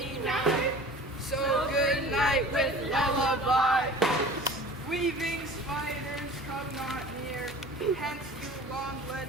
night. So good night with lullaby. Weaving spiders come not near, hence you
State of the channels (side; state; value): both; normal; correlation 0.42